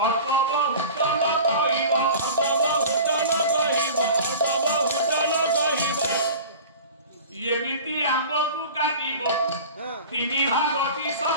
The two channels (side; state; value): both; inverted; correlation -0.38